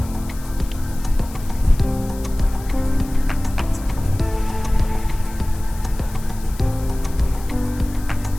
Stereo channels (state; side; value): noise; left; hiss, 19 dB below the sound